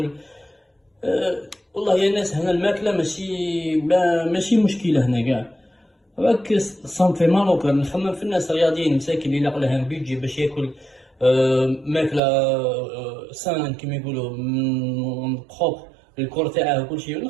والله يا ناس هنا الماكله ماشي مشكله هنا كاع. راك صنفي مالوكا نخمم في الناس الرياضيين مساكين اللي لاقوا لهم بيجي باش ياكل ماكله سان كيما يقولوا بروبر الكور تاعه وكل شيء،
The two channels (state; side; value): drops out; left; at 12.2 s